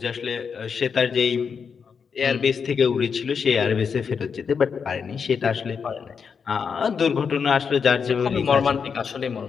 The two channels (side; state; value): right; quieter; 6.2 dB